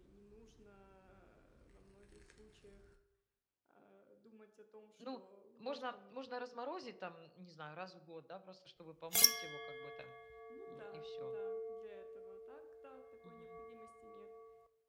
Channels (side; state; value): both; identical; correlation 1.00